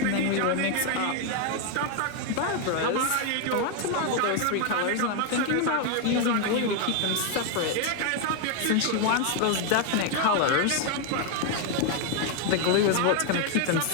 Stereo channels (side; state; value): both; different; correlation 0.01